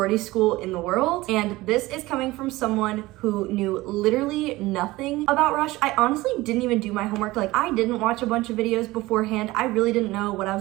school in the world. And this is coming from someone who knew literally nothing about rush. I honestly didn't even do my homework. Like I didn't watch a bunch of videos beforehand. I really didn't know what I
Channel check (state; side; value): quieter; left; 19.3 dB